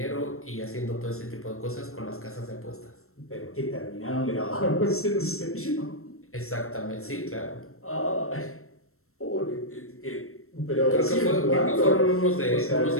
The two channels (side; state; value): right; late; 0.63 ms